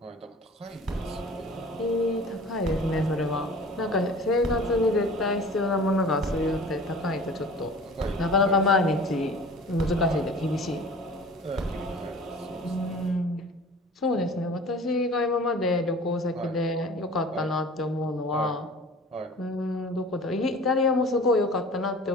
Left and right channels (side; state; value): both; normal; correlation 0.43